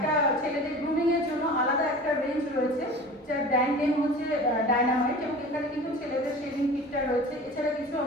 ছেলেদের গ্রুমিং এর জন্য আলাদা একটা রেঞ্জ রয়েছে, যার ব্র্যান্ড নেম হচ্ছে ডায়নামাইট, এবং এখানে কিন্তু ছেলেদের শেভিং কিটটা রয়েছে। এছাড়া কিছু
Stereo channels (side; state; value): both; normal; correlation 0.39